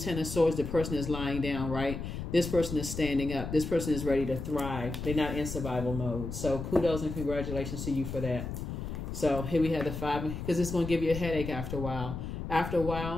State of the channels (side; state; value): left; noise; rumble, 6 dB below the sound